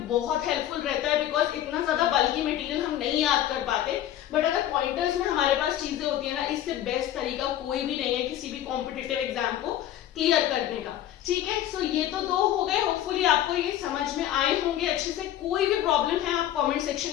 बहुत हेल्पफुल रहता है बिकॉज इतना ज्यादा बल्कि मटेरियल हम नहीं याद कर पाते, बट अगर पॉइंटर्स में हमारे पास चीजें होती है ना, इससे बेस्ट तरीका कोई भी नहीं है किसी भी कॉम्पिटिटिव एग्जाम को क्लियर करने का। ठीक है, सो ये तो दो हो गए। होपफुली आपको ये समझ में आए होंगे अच्छे से। कोई भी प्रॉब्लम है आप कॉमेंट सेक्शन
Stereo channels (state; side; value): quieter; right; 12.1 dB